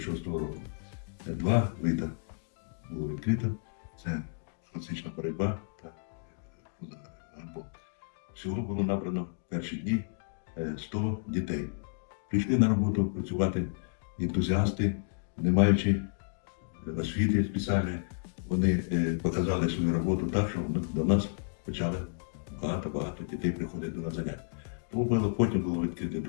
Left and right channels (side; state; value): right; silent; digital silence